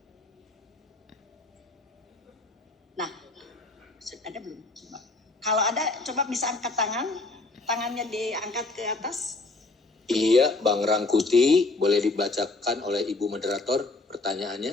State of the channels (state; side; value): quieter; right; 3.3 dB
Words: Nah, ada belum? Coba. Kalau ada, coba bisa angkat tangan. Tangannya diangkat ke atas. Iya, Bang Rangkuti, boleh dibacakan oleh Ibu Moderator